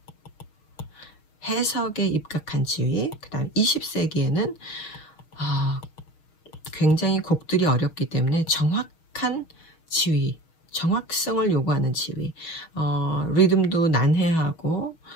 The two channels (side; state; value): right; late; 6.4 ms